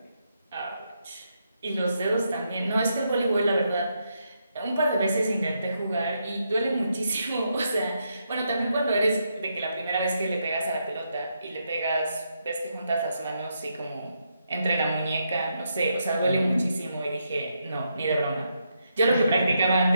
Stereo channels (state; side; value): inverted; both; correlation -0.81